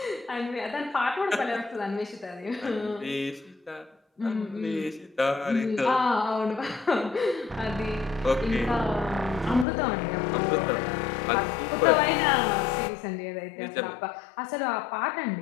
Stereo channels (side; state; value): right; drops out; at 9.7 s